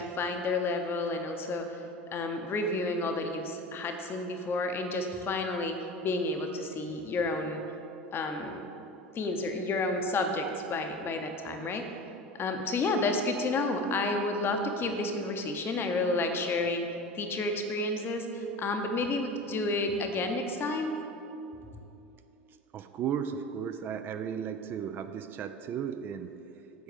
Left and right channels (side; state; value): both; normal; correlation 0.33